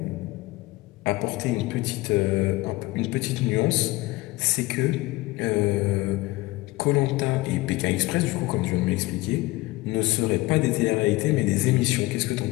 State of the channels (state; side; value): quieter; right; 20.3 dB